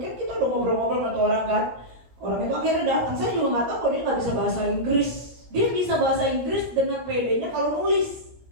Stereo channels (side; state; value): left; late; 17 ms